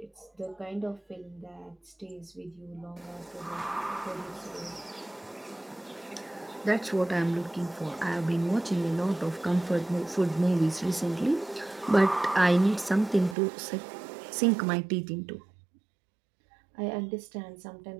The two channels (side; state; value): left; drops out; at 13.4 s